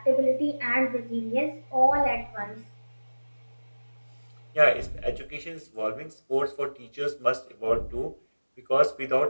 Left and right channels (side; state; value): both; inverted; correlation -1.00